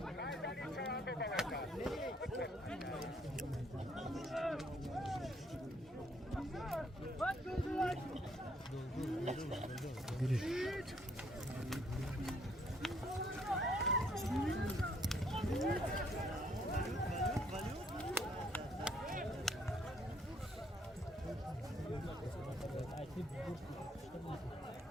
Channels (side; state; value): both; normal; correlation 0.67